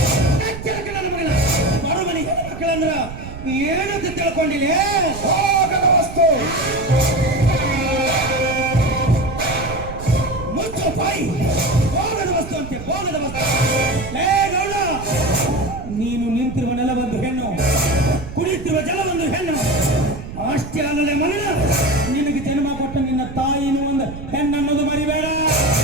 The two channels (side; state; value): right; noise; rumble, 11 dB below the sound